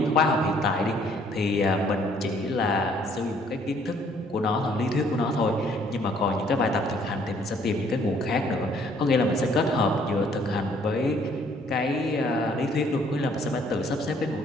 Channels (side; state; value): both; normal; correlation 0.62